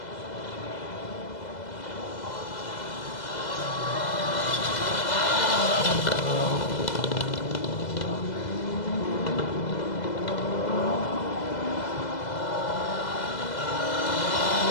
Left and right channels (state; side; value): late; right; 2.0 ms